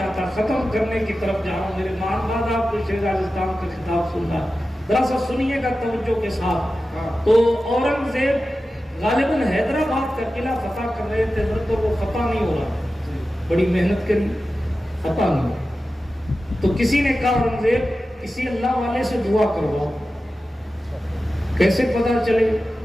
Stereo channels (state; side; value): normal; both; correlation 0.94